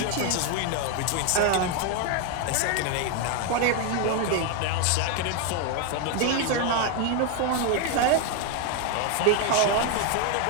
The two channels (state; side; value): different; both; correlation 0.01